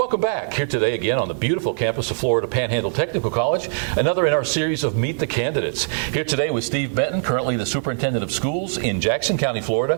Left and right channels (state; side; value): silent; left; 64 dB below the other